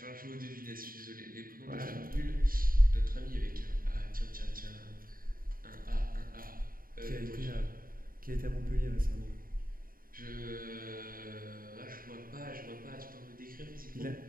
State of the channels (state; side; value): late; left; 0.41 ms